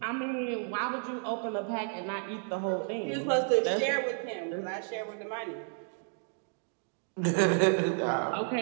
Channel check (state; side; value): silent; left; 57 dB below the other